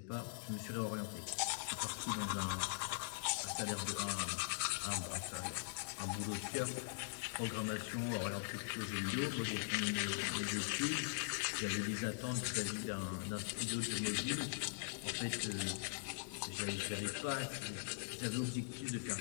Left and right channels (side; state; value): right; silent; digital silence